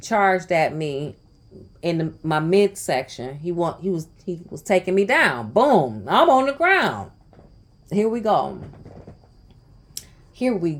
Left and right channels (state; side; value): identical; both; correlation 1.00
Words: at me in my midsection. He was taking me down. Boom. I'm on the ground. Here we go.